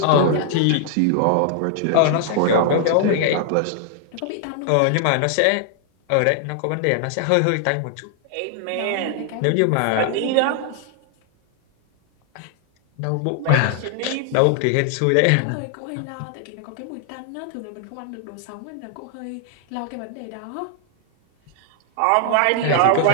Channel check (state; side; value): different; both; correlation 0.00